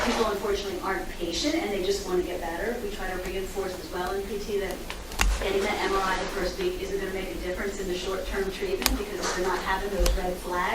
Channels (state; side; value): identical; both; correlation 1.00